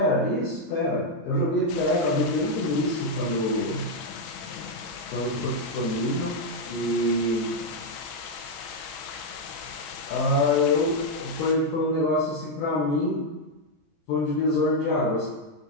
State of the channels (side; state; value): both; normal; correlation 0.00